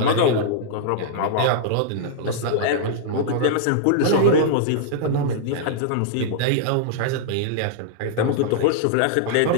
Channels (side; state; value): both; different; correlation -0.02